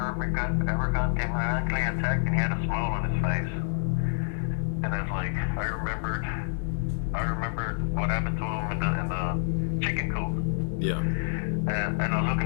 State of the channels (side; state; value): right; silent; digital silence